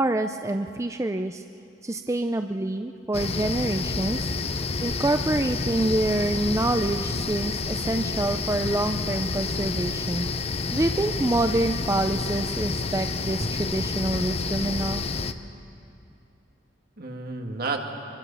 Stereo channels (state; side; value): normal; both; correlation 0.65